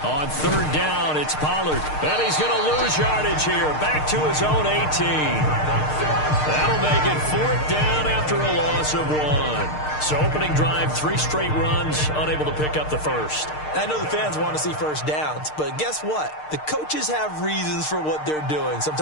3rd down, it's Pollard. And he's going to lose yardage here. Back to his own 18. That'll make it 4th down after a loss of 1. So opening drive, 3 straight runs, unable to pick up the first. I know the fans want to see first downs, but guess what? The coaches have reasons for what they're doing.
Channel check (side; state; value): right; late; 6.6 ms